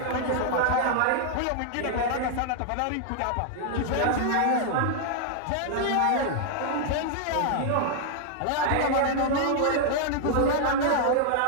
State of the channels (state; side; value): different; both; correlation 0.00